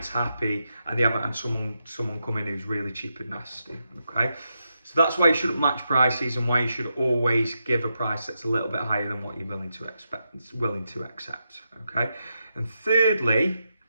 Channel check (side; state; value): both; inverted; correlation -0.86